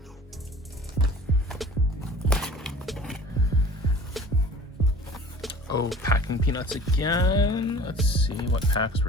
Oh, packing peanuts again. Let's see what packs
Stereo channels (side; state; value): both; normal; correlation 0.45